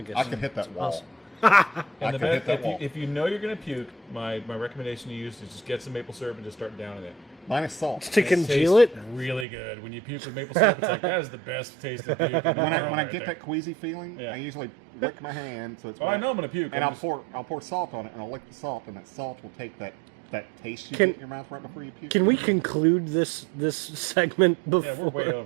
I could hit that wall. And I the could hit that wall. if you know you're gonna puke, my recommendation to use is just get some maple syrup and just start downing it. Mine is salt. To congeal it. Tastes really good when you puke with maple syrup. It's like that is the best taste of puke. When I get that queasy feeling, Yeah. I usually lick my hand so it's. Oh, I wet. know I'm gonna puke. And I'm I'll pour salt on it, and I'll lick the salt, and that salt will take that taste you Can- get in your mouth right before you puke. Can we conclude this segment Yeah, before we're way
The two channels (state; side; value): drops out; left; at 9.5 s